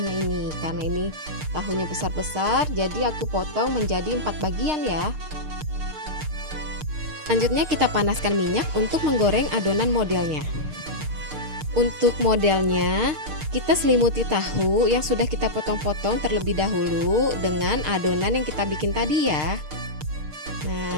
ini. Karena ini tahunya besar-besar, jadi aku potong menjadi 4 bagian ya. Selanjutnya kita panaskan minyak untuk menggoreng adonan modelnya. Untuk modelnya, kita selimuti tahu yang sudah kita potong-potong terlebih dahulu dengan adonan yang kita bikin tadi ya. Nah,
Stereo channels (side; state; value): left; late; 6.6 ms